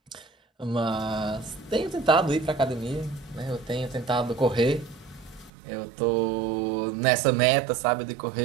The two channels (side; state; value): left; drops out; at 5.5 s